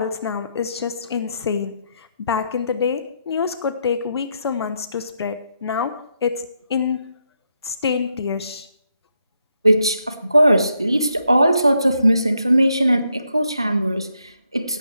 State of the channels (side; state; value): both; inverted; correlation -0.79